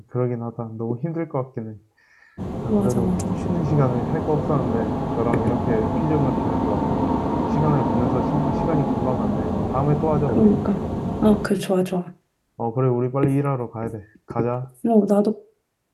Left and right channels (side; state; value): both; identical; correlation 1.00